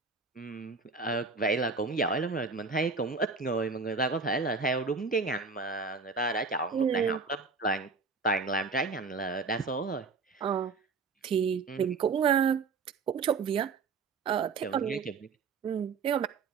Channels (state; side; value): quieter; left; 4.6 dB